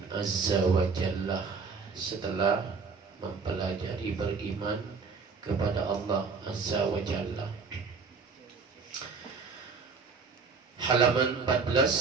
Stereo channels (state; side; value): quieter; left; 4.9 dB